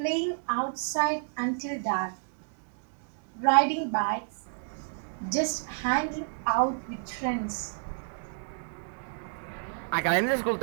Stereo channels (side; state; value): left; silent; digital silence